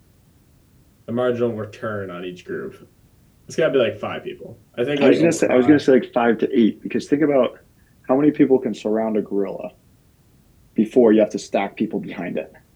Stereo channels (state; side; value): identical; both; correlation 1.00